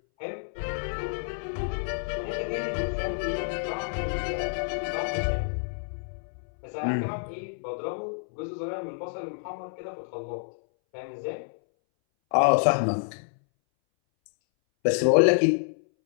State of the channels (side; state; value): right; silent; 59 dB below the other